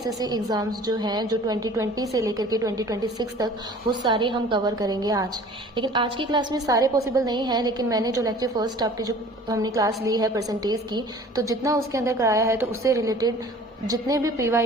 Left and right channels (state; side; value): normal; both; correlation 0.47